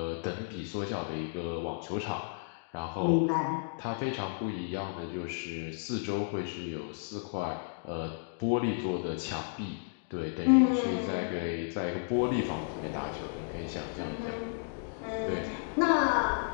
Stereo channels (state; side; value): silent; right; digital silence